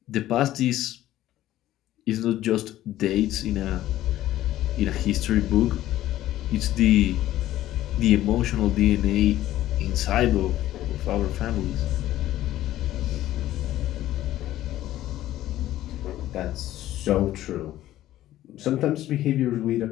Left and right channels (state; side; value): quieter; right; 14.0 dB